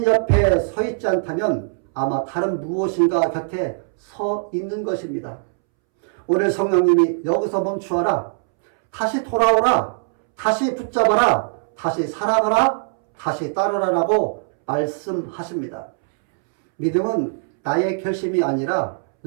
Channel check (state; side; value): silent; left; 65 dB below the other